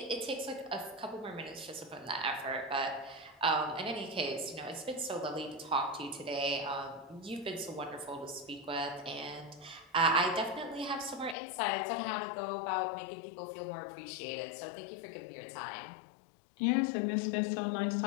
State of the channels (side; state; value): right; drops out; at 11.4 s